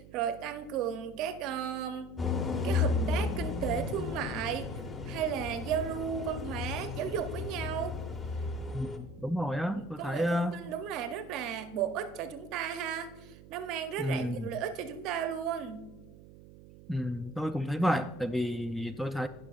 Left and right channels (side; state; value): right; noise; hum, 19 dB below the sound